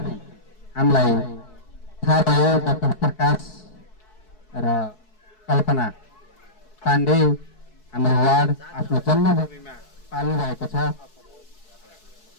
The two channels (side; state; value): right; late; 4.7 ms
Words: हामीलाई थाहा भयो डाक्टर प्रकाश र कल्पना पाण्डे हाम्रो वार्ड आफ्नो जन्मभूमिमा पाल्नु भएको छ